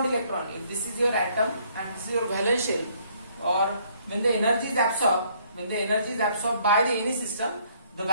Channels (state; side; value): inverted; both; correlation -0.65